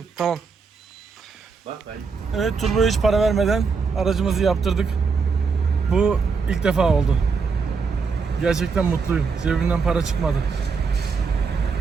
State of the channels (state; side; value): quieter; left; 5.1 dB